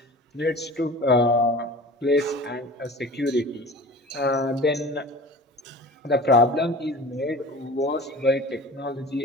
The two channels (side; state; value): both; normal; correlation 0.39